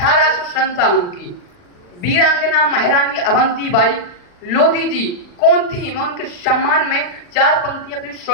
की वीरांगना महारानी अवंतीबाई लोधी जी कौन थी? मैं उनके सम्मान में 4 पंक्तियां अपनी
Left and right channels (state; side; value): late; right; 40 ms